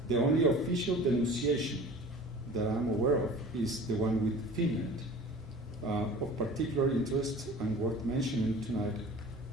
the only official denunciation that I'm aware of is the one with Finland. Of particular interest and worth mentioning tonight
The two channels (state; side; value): normal; both; correlation 0.42